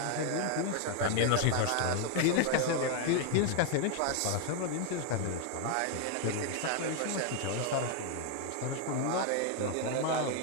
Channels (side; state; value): both; different; correlation 0.00